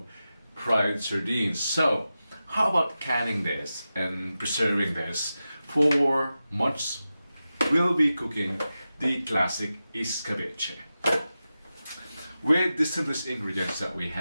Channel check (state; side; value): inverted; both; correlation -0.93